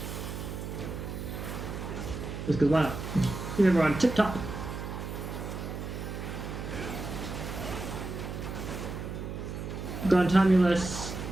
Just because why not? Keep everyone tip top. Gontamulus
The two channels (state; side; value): noise; right; hum, 6 dB below the sound